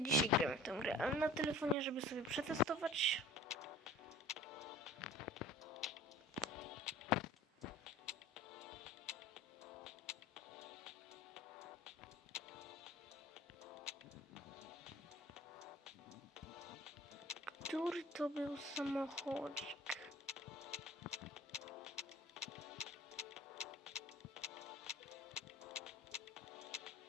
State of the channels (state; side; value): normal; both; correlation 0.45